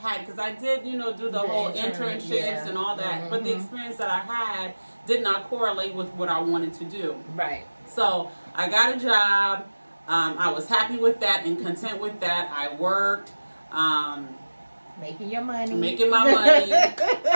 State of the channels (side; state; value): both; inverted; correlation -1.00